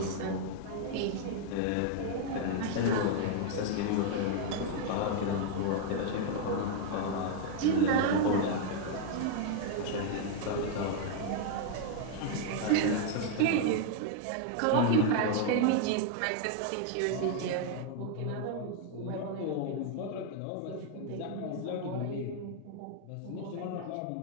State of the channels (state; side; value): different; both; correlation 0.00